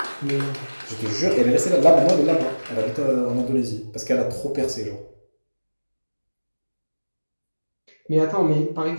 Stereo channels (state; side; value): inverted; both; correlation -1.00